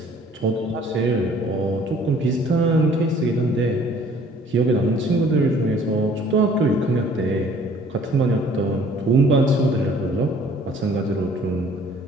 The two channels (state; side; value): normal; both; correlation 0.55